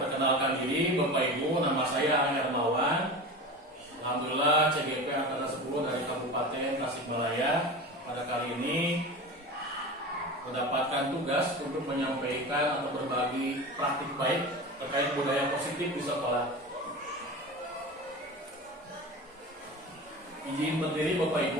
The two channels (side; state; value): both; normal; correlation 0.30